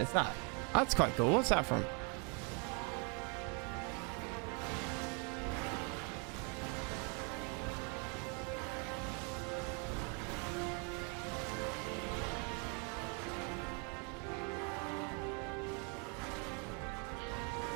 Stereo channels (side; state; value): left; quieter; 35.7 dB